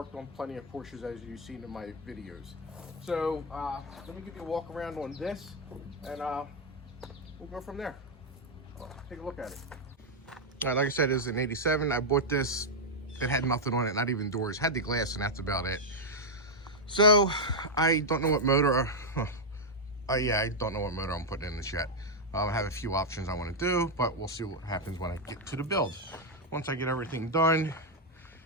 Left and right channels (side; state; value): both; normal; correlation 0.00